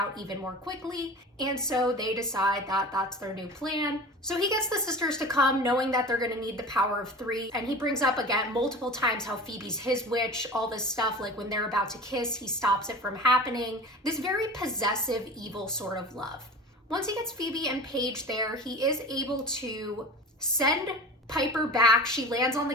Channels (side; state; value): both; normal; correlation 0.36